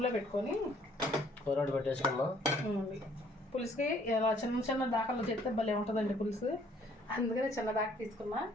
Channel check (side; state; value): both; normal; correlation 0.61